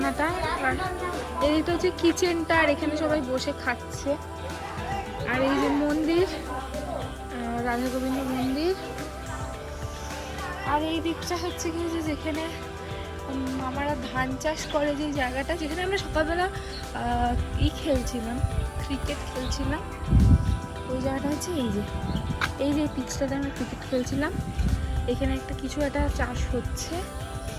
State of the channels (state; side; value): identical; both; correlation 1.00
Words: আর এদিকটা হচ্ছে কিচেনটা, আর এখানে সবাই বসে খাচ্ছে। আর এই যে মন্দির, রাধা গোবিন্দ মন্দির। আর এই দিকটা হচ্ছে কি যে যেখানে মামারা ধান চাষ করে, যে জায়গাটা যেখানে আমরা সকালবেলা খেলছিলাম, ক্রিকেট খেলছিলাম, ওই জায়গাটা হচ্ছে এই যে পিচটাতে আমরা ক্রিকেট খেলছিলাম। এখানে একটা কিছু একটা চাষ হচ্ছে।